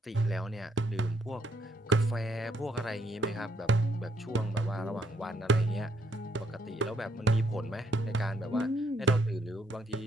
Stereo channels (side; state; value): both; normal; correlation 0.72